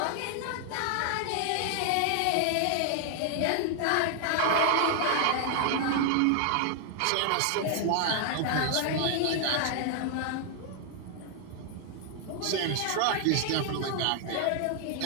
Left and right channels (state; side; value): different; both; correlation 0.00